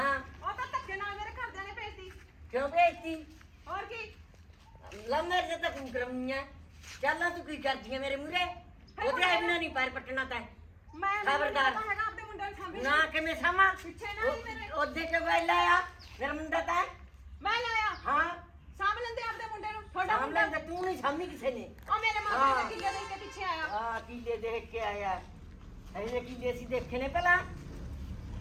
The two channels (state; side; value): identical; both; correlation 1.00